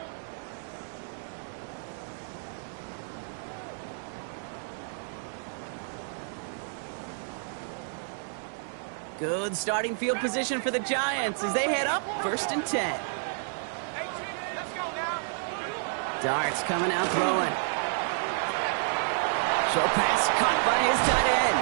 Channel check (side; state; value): left; silent; digital silence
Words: Good starting field position for the Giants as they head up 1st and 10. Darts coming out throwing. Short pass caught by his tight